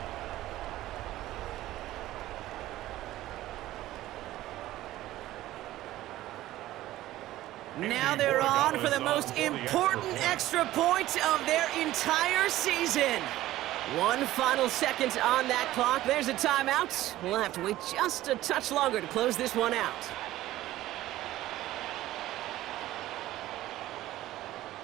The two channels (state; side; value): quieter; left; 15.3 dB